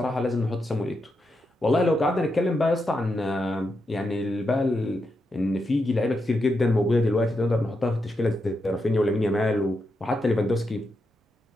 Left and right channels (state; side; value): normal; both; correlation 0.85